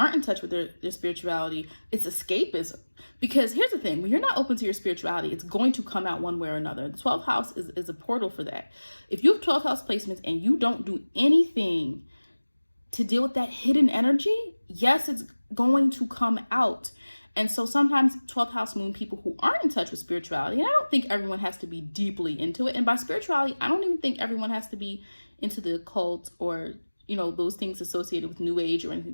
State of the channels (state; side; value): inverted; both; correlation -1.00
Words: in touch with their spirituality, it's escapism. Because here's the thing, when you're not open to your spirituality, it's going to come out one way or another. The 12th house is a portal for that. If you have 12th house placements and you don't do anything to deal with that hidden energy, yes, it's going to come out. And so sometimes 12th house moon people who aren't in touch with spirituality, and I don't think everyone has to be deeply into it. And by spirituality, I don't even think everyone has to be into the occult or, those things associated with new age or anything